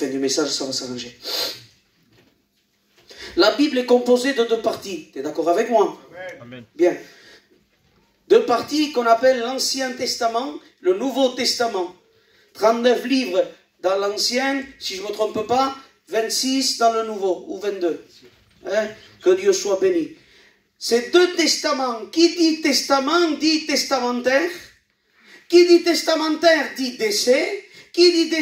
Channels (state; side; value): identical; both; correlation 1.00